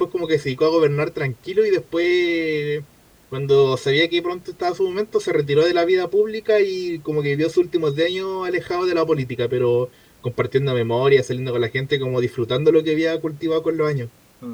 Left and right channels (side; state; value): both; identical; correlation 1.00